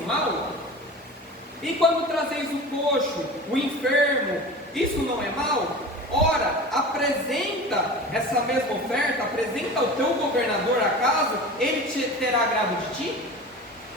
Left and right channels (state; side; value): normal; both; correlation 0.34